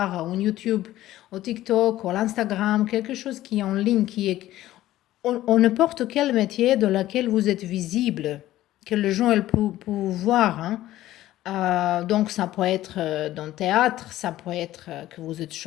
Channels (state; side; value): quieter; right; 14.7 dB